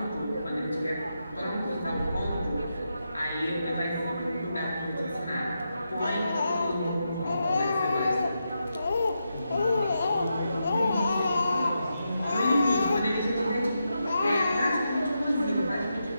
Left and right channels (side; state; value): both; inverted; correlation -0.86